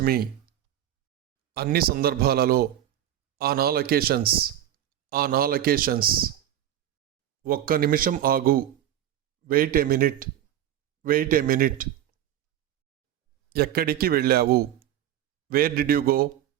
me. అన్ని సందర్భాలలో. On all occasions. On all occasions. ఒక్క నిమిషం ఆగు. Wait a minute. Wait a minute. ఎక్కడికి వెళ్ళావు? Where did you go?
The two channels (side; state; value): left; quieter; 11.6 dB